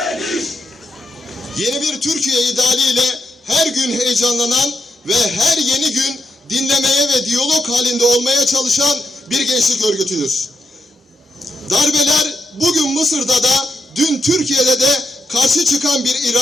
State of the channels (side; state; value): both; normal; correlation 0.82